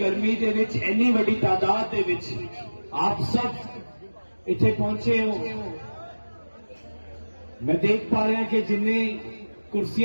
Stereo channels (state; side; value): inverted; both; correlation -1.00